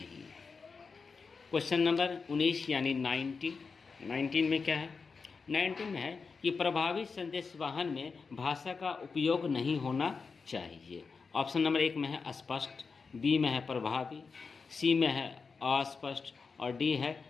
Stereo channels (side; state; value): right; quieter; 4.9 dB